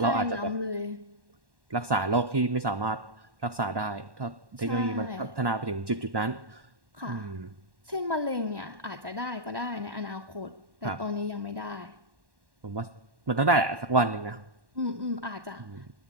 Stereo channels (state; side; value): late; left; 1.1 ms